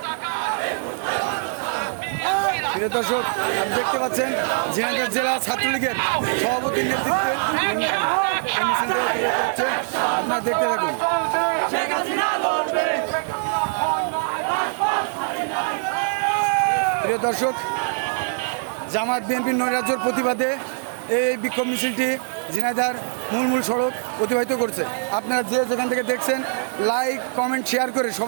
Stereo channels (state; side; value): silent; left; 61 dB below the other